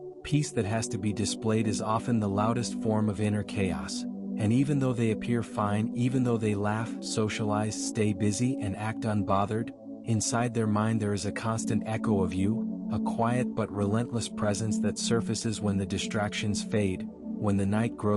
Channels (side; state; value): both; identical; correlation 1.00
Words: peace that has to be displayed is often the loudest form of inner chaos. And even though they appear fine, even though they laugh, socialize, stay busy, and act unbothered, inside their mind there is a constant echo of you, a quiet but relentless presence that surfaces when the distractions fade, when the night